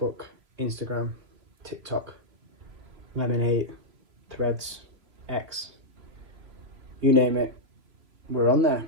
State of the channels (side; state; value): left; late; 3.1 ms